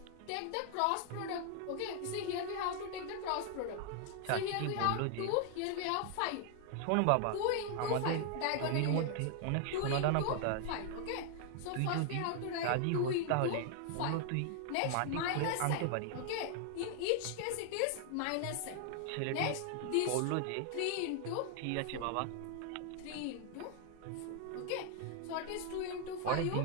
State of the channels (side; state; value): both; different; correlation 0.00